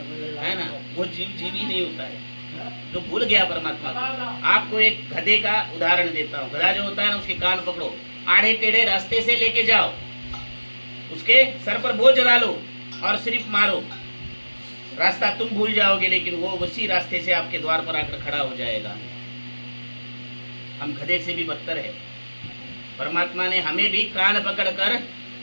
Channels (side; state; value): both; inverted; correlation -1.00